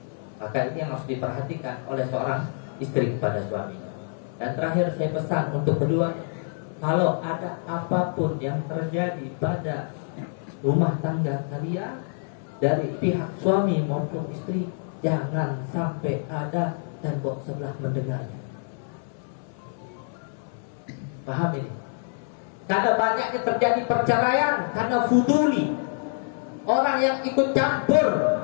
Maka ini yang harus diperhatikan oleh seorang istri kepada suaminya. Dan terakhir saya pesan untuk kedua, kalau ada apapun yang terjadi pada rumah tangga kalian dari pihak suami maupun istri, jangan sampai ada tembok sebelah mendengarnya. Paham ini? Karena banyaknya terjadi perceraian karena fuduli, orang yang ikut campur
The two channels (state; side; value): silent; right; 61 dB below the other